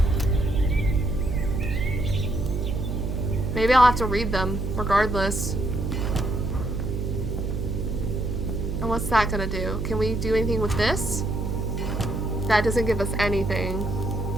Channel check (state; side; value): noise; right; hum, 2 dB below the sound